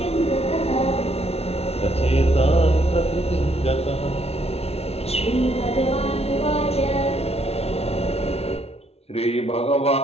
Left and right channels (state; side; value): late; right; 0.30 ms